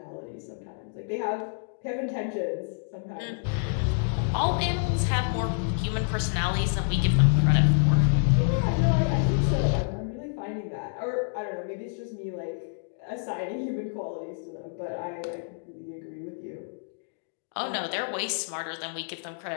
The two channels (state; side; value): silent; right; digital silence